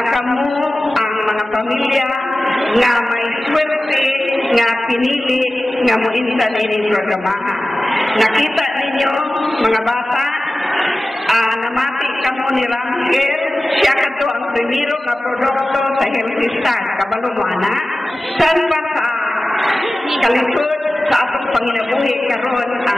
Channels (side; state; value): both; normal; correlation 0.96